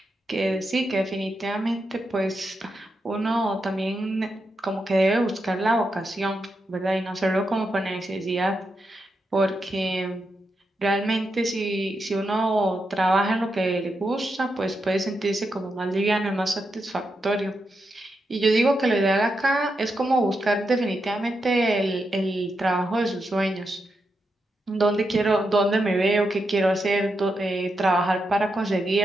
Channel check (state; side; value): normal; both; correlation 0.85